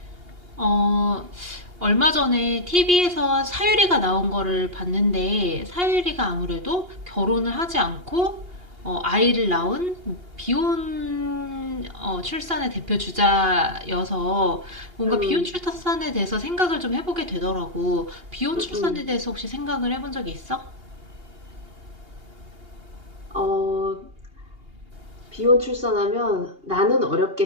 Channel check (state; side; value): late; left; 2.8 ms